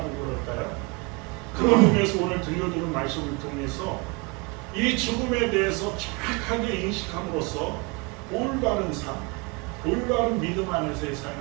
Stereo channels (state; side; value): quieter; left; 29.2 dB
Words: 그럴까요? 그런 의미에서 오늘 들려드린 말씀을 통해서 이 죽음에 대해서 정확하게 인식함으로써 올바른 삶, 올바른 믿음 안에서의